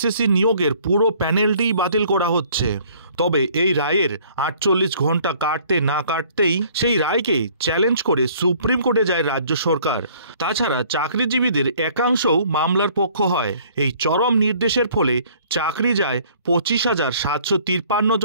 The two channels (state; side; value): inverted; both; correlation -0.57